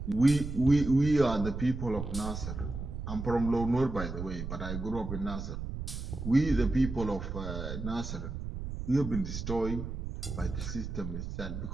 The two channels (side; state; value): right; noise; rumble, 6 dB below the sound